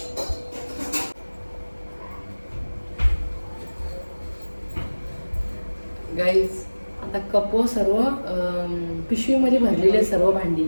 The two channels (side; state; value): both; inverted; correlation -1.00